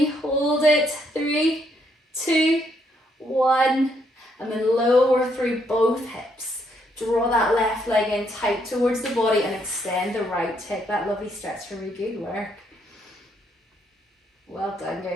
hold it, 3, 2, 1, and then lower through both hips. Draw that left leg in tight towards the body and extend the right. Take that lovely stretch for me, good work. Well done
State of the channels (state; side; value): normal; both; correlation 0.73